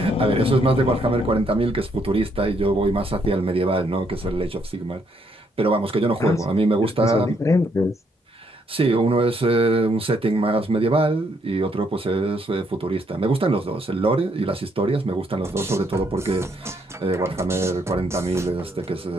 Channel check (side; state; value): both; normal; correlation 0.72